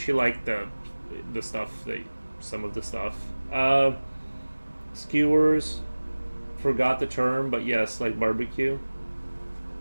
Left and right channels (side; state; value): both; inverted; correlation -1.00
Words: the stuff, some of the stuff. Skewers, forgot the term, but yes, like barbecue.